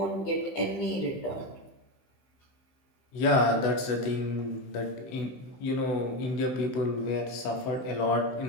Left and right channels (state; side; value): late; right; 16 ms